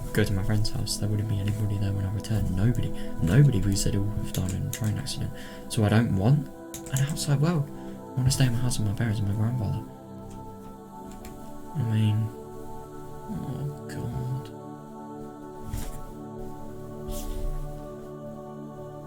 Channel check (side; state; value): both; identical; correlation 1.00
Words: go to my friend's house, there wouldn't be anybody there when I return. Nobody, because they'd all have died in a train accident. So I don't want an outside world. I want to stay in my house with my parents and my grandfather. I mean, oh god.